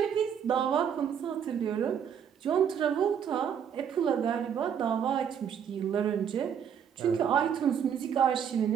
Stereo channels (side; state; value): left; quieter; 8.1 dB